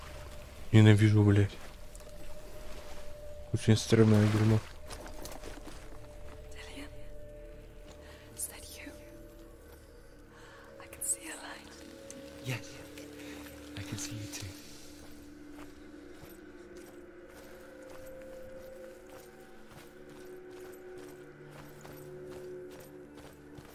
Ненавижу, блядь. Очень стрёмное дерьмо. Dillian, is that you? I can see a light. Yes, I can see you too.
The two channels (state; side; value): identical; both; correlation 1.00